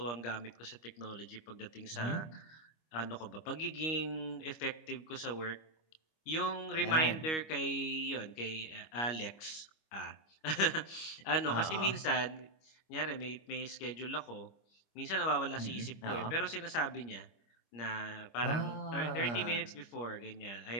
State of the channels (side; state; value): right; late; 25 ms